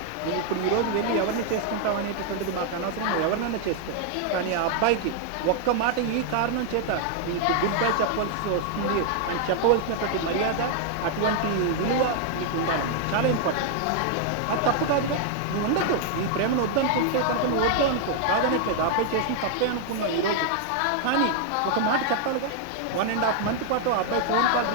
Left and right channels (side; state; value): both; different; correlation 0.00